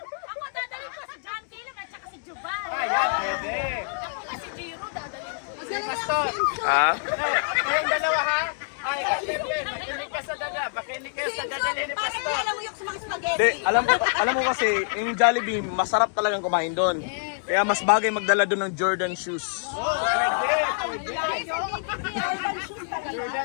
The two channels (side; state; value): right; silent; digital silence